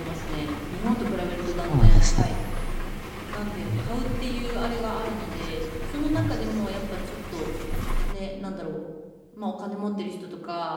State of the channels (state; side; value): identical; both; correlation 1.00